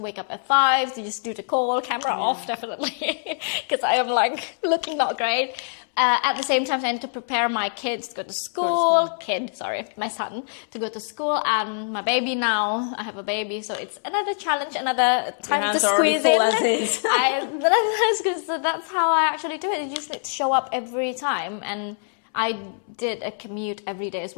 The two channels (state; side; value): silent; right; 63 dB below the other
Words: up at 5 to just do the call, camera off, definitely. Because I am like looking not great. At the same time, I need to prepare my kids to go to school. My son to go to school, and my baby now. I have a baby, so it's another challenge, another time Your hands to are already squeeze full in. as is. So that's how I actually do it. You just need to show up every time, and I did a commute every day as